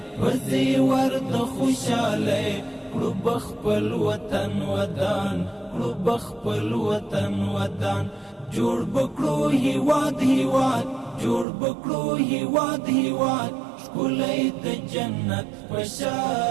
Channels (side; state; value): left; drops out; at 11.5 s